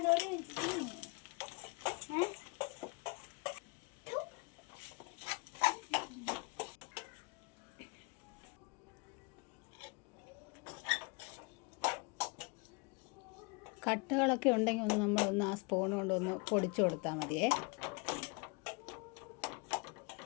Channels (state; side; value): quieter; right; 29.4 dB